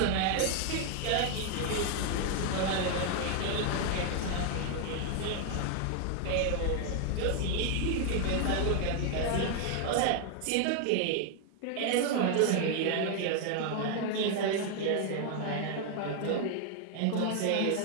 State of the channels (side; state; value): both; different; correlation 0.00